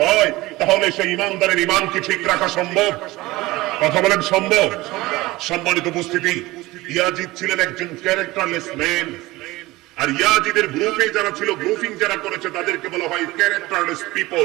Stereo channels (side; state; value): left; quieter; 19.6 dB